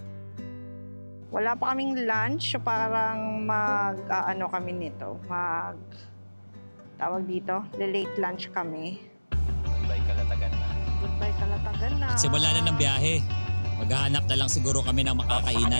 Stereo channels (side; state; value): both; inverted; correlation -1.00